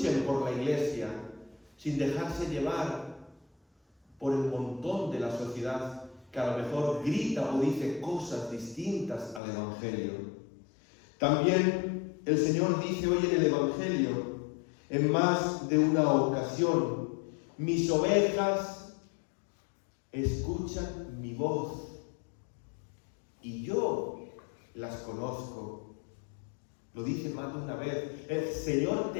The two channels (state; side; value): drops out; right; at 9.4 s